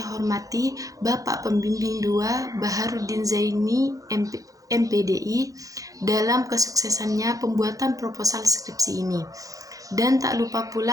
hormati Bapak Pembimbing 2 Baharudin Zaini MPDI dalam kesuksesannya pembuatan proposal skripsi ini. Dan tak lupa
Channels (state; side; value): late; left; 0.17 ms